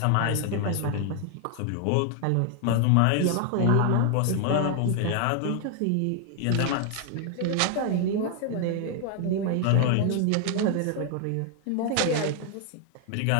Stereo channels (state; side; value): different; both; correlation 0.00